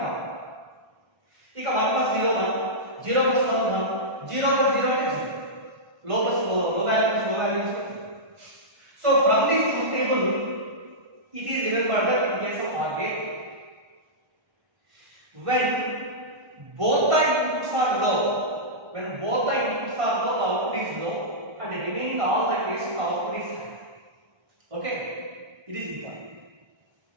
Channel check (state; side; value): late; left; 1.3 ms